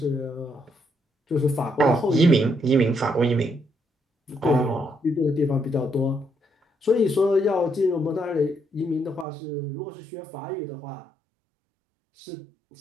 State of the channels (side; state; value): left; drops out; at 9.2 s